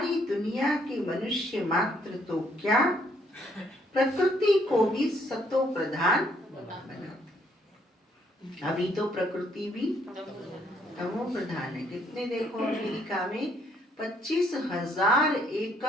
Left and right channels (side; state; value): both; normal; correlation 0.68